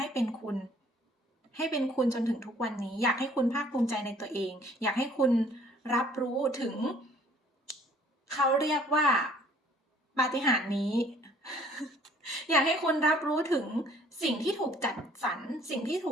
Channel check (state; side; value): normal; both; correlation 0.57